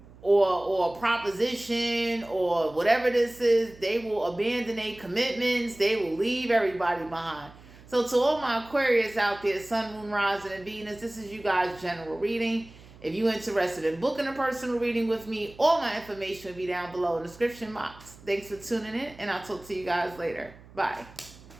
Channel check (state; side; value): noise; right; hum, 22 dB below the sound